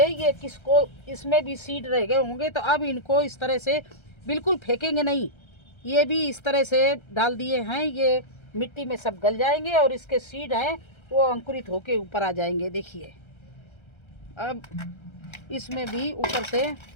ये किसको इसमें भी सीड रह गए होंगे, तो अब इनको इस तरह से बिल्कुल फेंकेंगे नहीं, ये भी इस तरह से डाल दिए हैं, ये मिट्टी में सब गल जाएंगे और इसके सीड हैं वो अंकुरित होके ऊपर आ जाएंगे। देखिए अब इसमें भी ऊपर से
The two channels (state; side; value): late; right; 1.3 ms